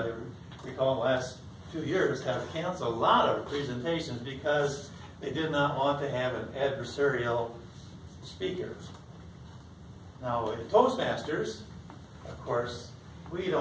recall, the last few years have canceled a lot of presentations because they did not want to have an adversarial speaker. Now, in Toastmasters, of course, we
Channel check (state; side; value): identical; both; correlation 1.00